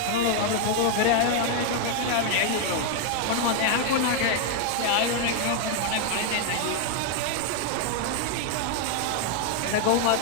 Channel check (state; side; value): different; both; correlation 0.00